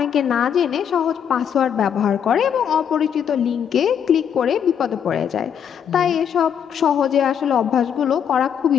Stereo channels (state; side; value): quieter; right; 8.3 dB